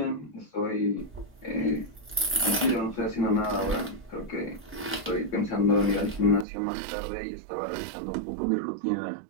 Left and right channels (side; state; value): left; drops out; at 6.5 s